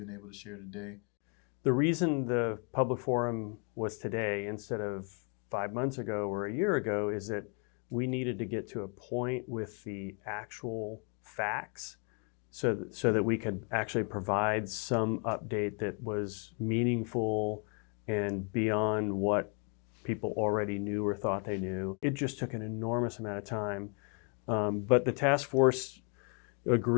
able to share today. The reason the public forum was today instead of 5 months ago or a year ago is that we needed to get to a point with the actual facts so that we could actually provide some update that was meaningful and beyond what people already knew or thought they knew. It just took an enormous amount of time. But the task force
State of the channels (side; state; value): right; quieter; 37.6 dB